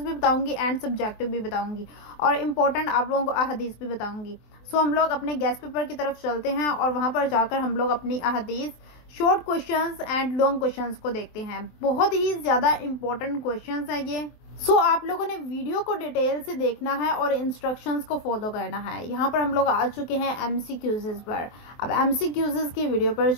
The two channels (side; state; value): right; late; 23 ms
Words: बताऊंगी एंड सब्जेक्टिव भी बताऊंगी और इम्पोर्टेंट आप लोगों को अहादीस भी बताऊंगी। सो हम लोग अपने गेस्ट पेपर की तरफ चलते हैं और वहाँ पर जाकर हम लोग अपनी अहादीस, short questions and long questions को देखते हैं। बहुत ही ज़्यादा इंपॉर्टेंट क्वेश्चंस हैं ये। आप लोगों ने वीडियो को डिटेल से देखना है और इंस्ट्रक्शंस को फॉलो करना है। यहाँ पर हम लोग आ चुके हैं एमसीक्यूज़ पर। अब एमसीक्यूज़ की वीडियो पर